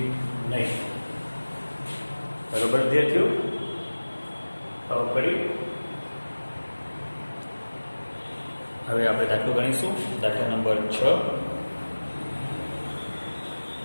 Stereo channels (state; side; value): inverted; both; correlation -1.00